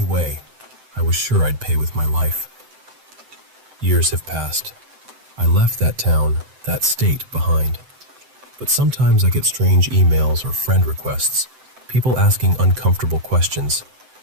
way, I was sure I'd pay with my life. Years have passed. I left that town, that state behind. But sometimes I get strange emails or friend requests, people asking uncomfortable questions.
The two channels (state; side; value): late; left; 7.8 ms